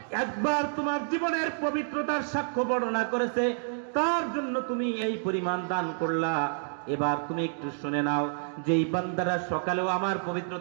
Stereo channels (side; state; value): left; silent; digital silence